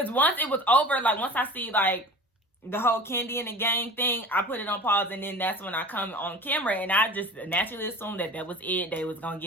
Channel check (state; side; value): normal; both; correlation 0.38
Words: once it was over, like once I see like the whole Kandi and the gang thing, I put it on pause, and then that's when I come on camera, and I just naturally assumed that was it. They was gonna